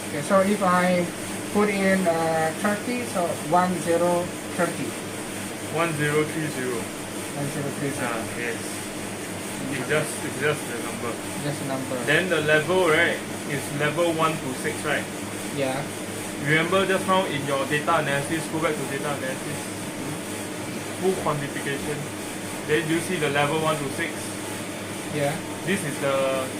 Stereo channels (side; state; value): both; identical; correlation 1.00